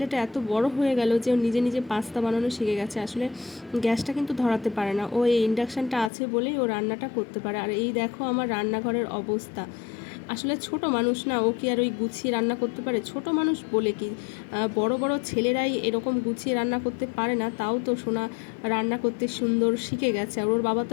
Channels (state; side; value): drops out; right; at 6.1 s